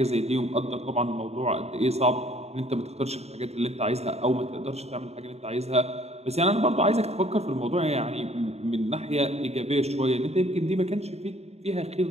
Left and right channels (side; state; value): left; late; 0.31 ms